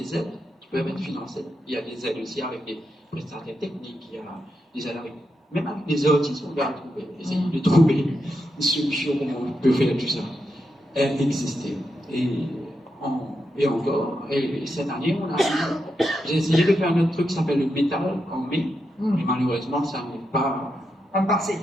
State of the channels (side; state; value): both; normal; correlation 0.85